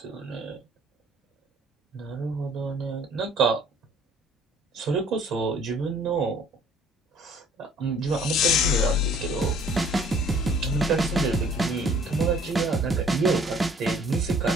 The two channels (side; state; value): both; normal; correlation 0.56